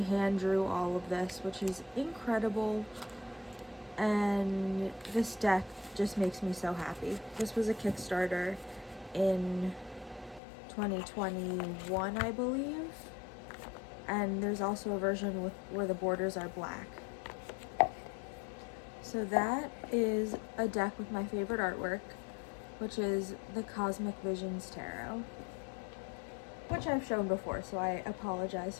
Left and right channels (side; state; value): right; drops out; at 10.4 s